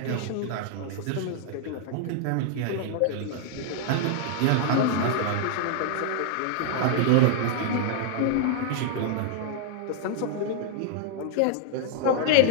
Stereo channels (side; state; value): both; different; correlation 0.00